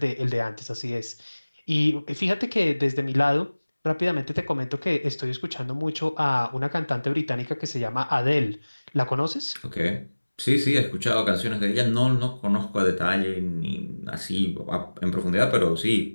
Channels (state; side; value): inverted; both; correlation -1.00